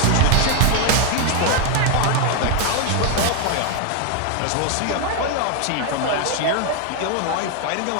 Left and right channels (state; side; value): different; both; correlation 0.01